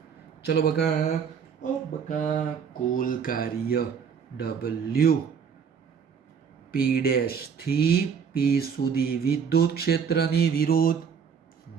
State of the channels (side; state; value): left; quieter; 6.8 dB